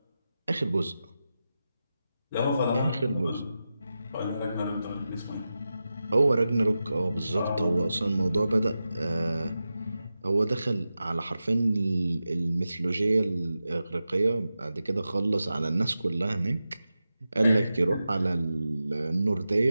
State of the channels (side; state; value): both; inverted; correlation -0.92